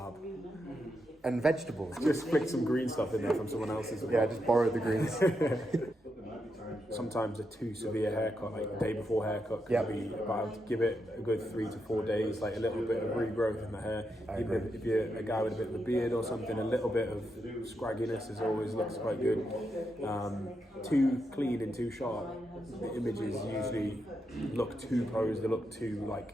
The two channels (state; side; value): normal; both; correlation 0.84